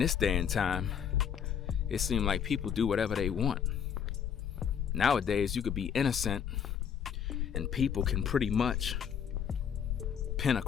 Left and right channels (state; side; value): quieter; right; 8.0 dB